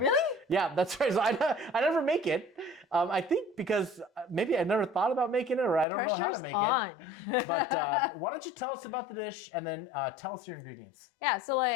Yeah, that's right. So I never make it. I think because maybe I never thought about making it, or I don't know how to make it. But why don't you tell us about the dish and then tell us your ingredients? Yeah, so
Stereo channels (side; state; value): right; drops out; at 5.9 s